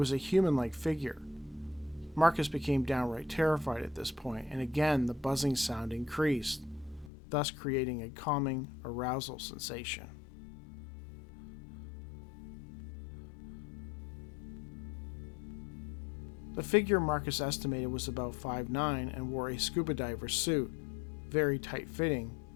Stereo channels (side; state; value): right; drops out; at 7.1 s